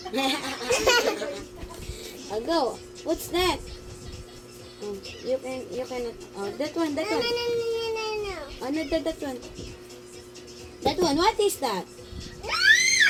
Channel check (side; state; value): both; identical; correlation 1.00